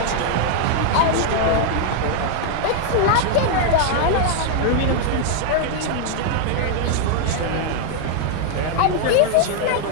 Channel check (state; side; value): different; both; correlation 0.00